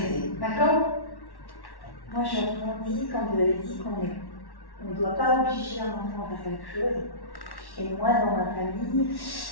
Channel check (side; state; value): right; late; 1.1 ms